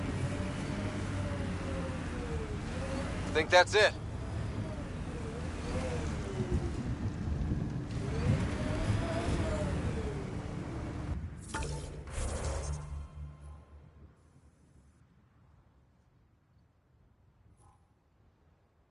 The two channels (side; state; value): both; identical; correlation 1.00